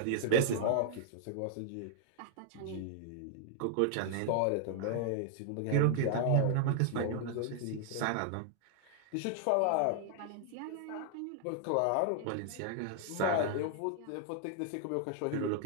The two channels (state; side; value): different; both; correlation 0.00